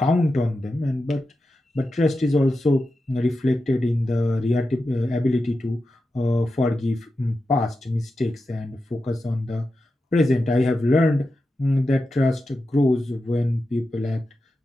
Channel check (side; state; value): both; normal; correlation 0.91